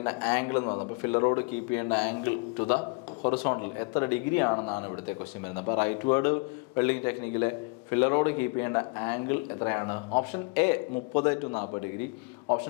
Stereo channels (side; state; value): right; quieter; 31.6 dB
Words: ആംഗിൾ എന്ന് പറയുന്നത്. അപ്പോൾ ഫില്ലർ റോഡ് കീപ്പ് ചെയ്യേണ്ട ആംഗിൾ ടു ദ ഹൊറിസോണ്ടൽ എത്ര ഡിഗ്രി ആണെന്നാണ് ഇവിടുത്തെ ക്വസ്റ്റ്യൻ വരുന്നത്. അപ്പോൾ റൈറ്റ് വേർഡ് വെൽഡിങ് ടെക്നിക്കിലെ ഫില്ലർ റോഡ് കീപ്പ് ചെയ്യേണ്ട ആംഗിൾ എത്രയാണ്? Option A 30 to 40 degree,